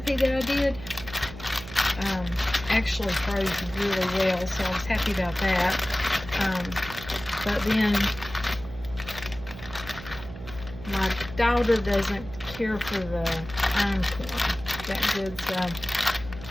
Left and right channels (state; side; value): noise; right; hum, 13 dB below the sound